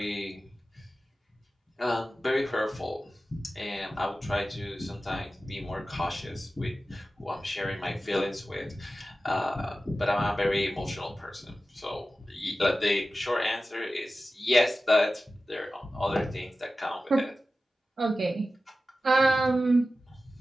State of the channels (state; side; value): normal; both; correlation 0.95